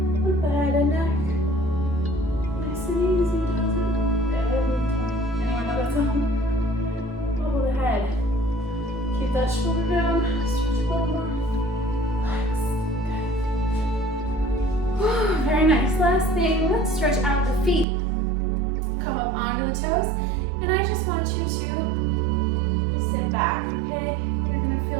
with the head and neck. Nice and easy, doesn't it? Every time. Anyone nice. Last thing, let's stretch out the feet. Come up onto the toes, and I just want you to sit back, okay? You're gonna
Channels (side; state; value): left; drops out; at 17.9 s